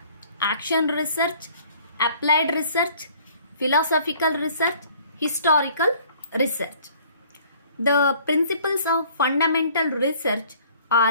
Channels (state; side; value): inverted; both; correlation -0.55